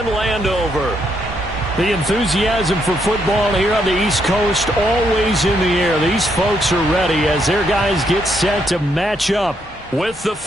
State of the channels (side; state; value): both; normal; correlation 0.76